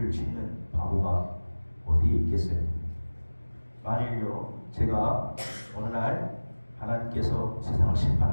짓는 바보가 어디에 있겠어요? 만일요 제가 어느 날 하나님께서 세상을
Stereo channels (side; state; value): both; inverted; correlation -1.00